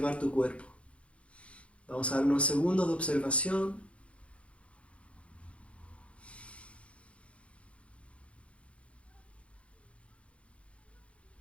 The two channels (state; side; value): late; right; 0.061 ms